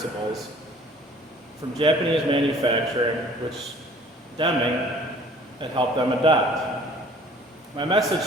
from Japanese manufacturing, which Deming had helped them adopt. My message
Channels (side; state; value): both; normal; correlation 0.52